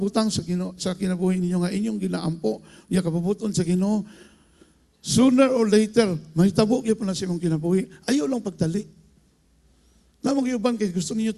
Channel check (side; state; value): both; identical; correlation 1.00